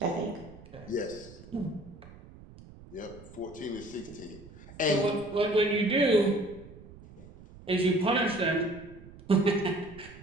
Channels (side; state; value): right; noise; rumble, 19 dB below the sound